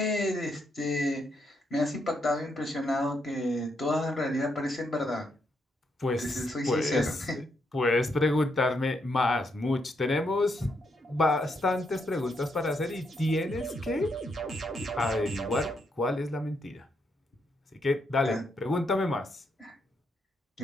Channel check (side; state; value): both; normal; correlation 0.78